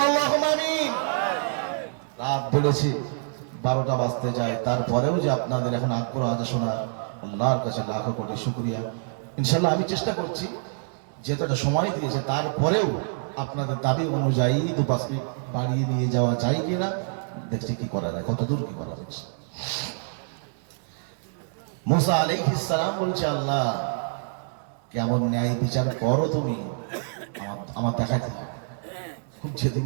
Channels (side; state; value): left; silent; 59 dB below the other